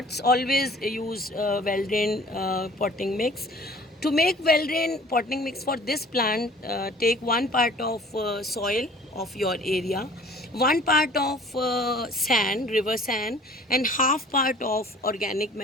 always use well drained potting mix. To make well drained potting mix for this plant, take one part of soil of your area, one part of sand, river sand, and half part of organic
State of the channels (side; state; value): both; normal; correlation 0.50